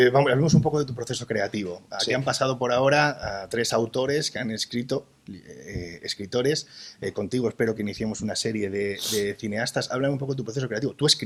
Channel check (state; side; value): identical; both; correlation 1.00